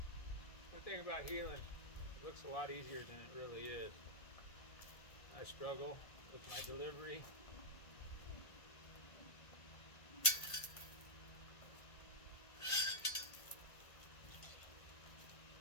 One thing about heeling, it looks a lot easier than it really is. I struggle with my delivery.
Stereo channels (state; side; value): late; right; 1.5 ms